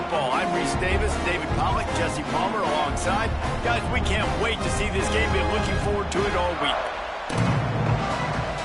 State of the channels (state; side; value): identical; both; correlation 1.00